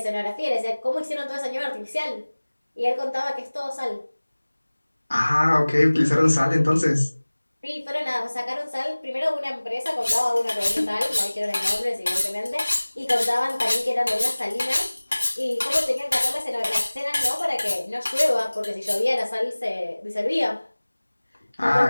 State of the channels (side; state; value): both; inverted; correlation -1.00